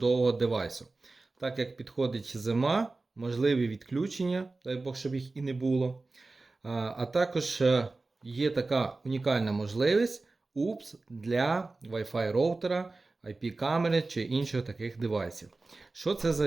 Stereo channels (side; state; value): left; quieter; 3.4 dB